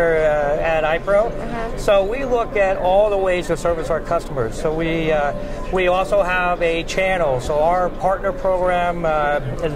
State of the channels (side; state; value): both; identical; correlation 1.00